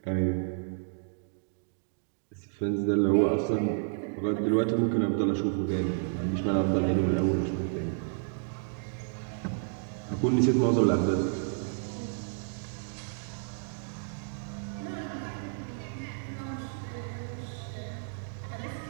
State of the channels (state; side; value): silent; left; digital silence